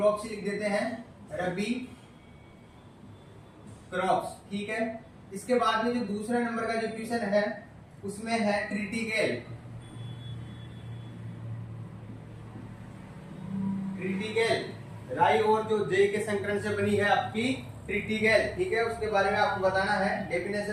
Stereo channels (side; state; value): both; identical; correlation 1.00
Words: ही लिख देते हैं, रबी क्रॉप्स, ठीक है। इसके बाद में जो दूसरा नंबर का जो क्वेश्चन है उसमें है क्रिटिकल राई और जो जे के संकरण से बनी है आपकी क्रिटिकल, ठीक है, उसके बारे में आपको बताना है,